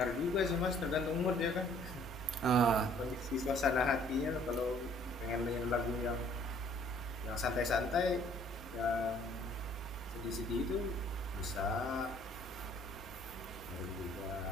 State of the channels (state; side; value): normal; both; correlation 0.58